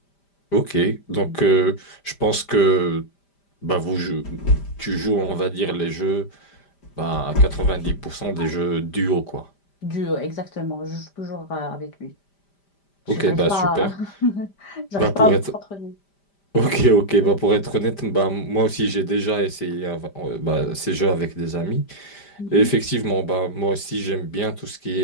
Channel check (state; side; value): late; right; 5.0 ms